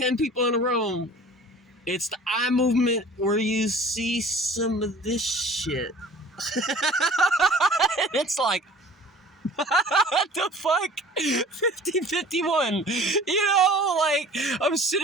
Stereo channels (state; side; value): normal; both; correlation 0.46